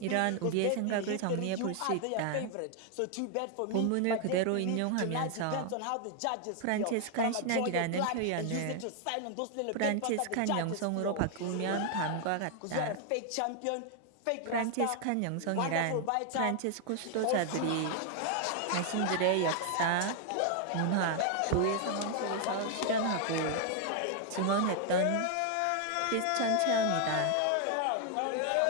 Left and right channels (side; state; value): both; different; correlation 0.00